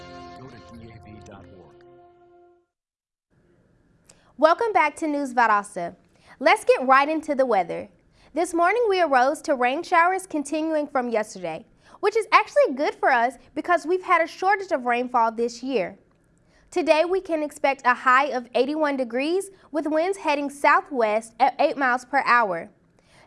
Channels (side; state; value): both; identical; correlation 1.00